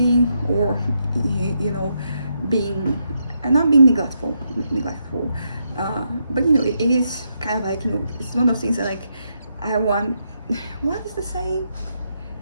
or being not being neglectful, but it is kind of like it's one of those things that like I want. What is the saying?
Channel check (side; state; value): both; inverted; correlation -0.81